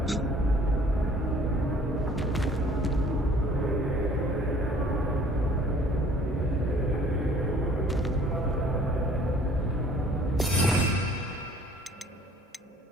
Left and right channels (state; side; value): normal; both; correlation 0.55